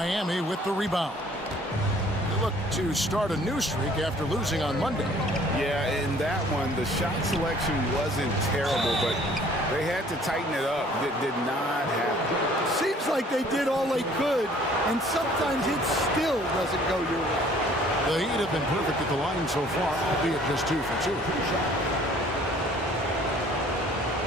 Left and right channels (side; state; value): both; normal; correlation 0.55